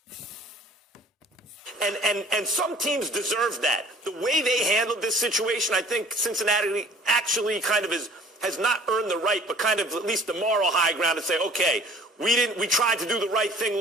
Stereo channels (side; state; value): both; normal; correlation 0.51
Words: And some teams deserve that. The way they handled this situation, I think Cincinnati actually kind of has not earned the right, but kind of at least the moral high ground to say, okay, we tried to do the right thing